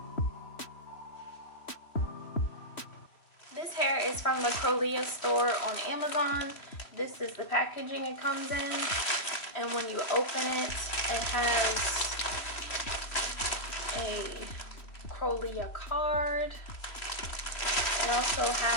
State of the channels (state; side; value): late; right; 3.1 ms